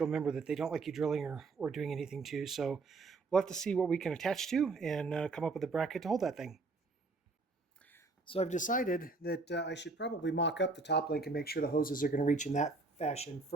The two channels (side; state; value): left; quieter; 3.8 dB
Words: member that they don't like you drilling or doing anything to. So we'll have to see what we can attach to and come up with a bracket to hold that thing. So I've decided that I should probably mock up the top link and make sure the hoses are going to reach in that fashion